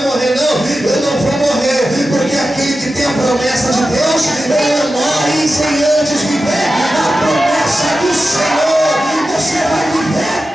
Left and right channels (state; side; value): normal; both; correlation 0.93